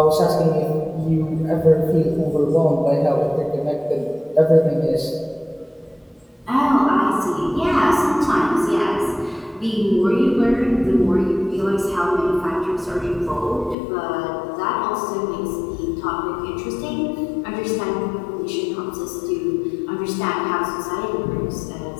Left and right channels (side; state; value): right; drops out; at 13.8 s